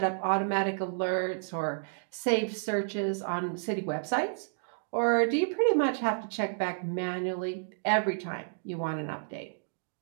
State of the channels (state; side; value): silent; left; digital silence